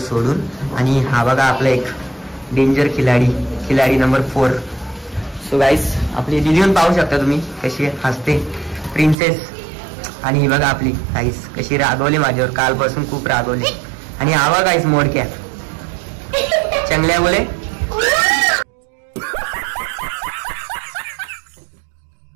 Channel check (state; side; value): drops out; left; at 9.2 s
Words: आणि हा बघा आपला एक डेंजर खिलाडी नंबर 4. सो गाईज, आपली दिदीहून पाहू शकता तुम्ही कशी हसते, प्रिन्सेस. आणि ही बघा आपली गाईज कशी रागवली माझ्यावर, कालपासून खूप रागवली. आणि हा बघा गाईज मोडक्या चंगल्या बोले.